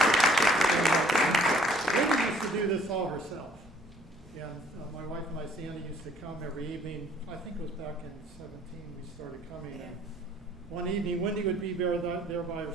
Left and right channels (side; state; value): both; normal; correlation 0.59